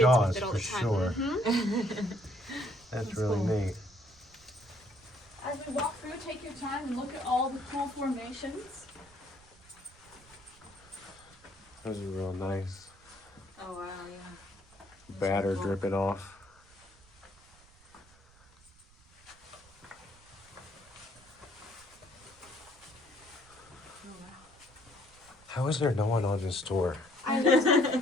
with it all for the time. sure. That's really cool. neat. As we walk through, take your time and look at all the cool formations. Those are real nice. Oh wow, yeah. Batter dripping off. How is there no one on this tour?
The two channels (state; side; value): noise; right; rumble, 26 dB below the sound